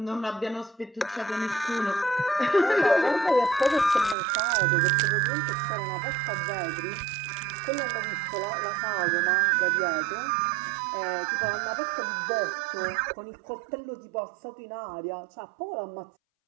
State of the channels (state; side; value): drops out; left; at 4.2 s